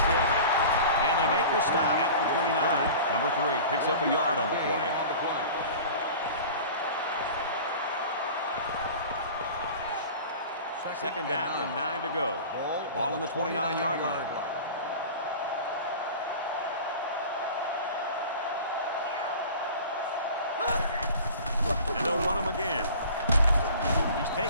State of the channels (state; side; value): inverted; both; correlation -0.39